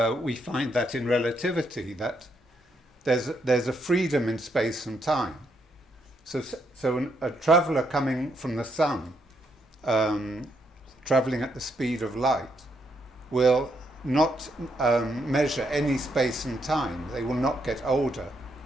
we find that in relativity, that there's a freedom in space and time. So a traveller coming from the sun, travelling at the speed of light, will not measure any space and time. They will not get older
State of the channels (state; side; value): normal; both; correlation 0.77